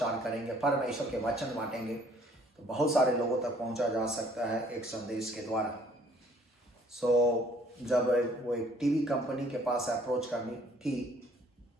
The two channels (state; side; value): normal; both; correlation 0.59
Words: करेंगे, परमेश्वर के वचन बांटेंगे, तो बहुत सारे लोगों तक पहुंचा जा सकता है एक संदेश के द्वारा। सो जब वो एक टीवी कंपनी के पास अप्रोच करनी की,